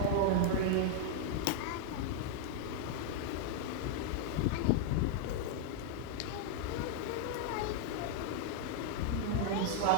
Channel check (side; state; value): both; different; correlation 0.00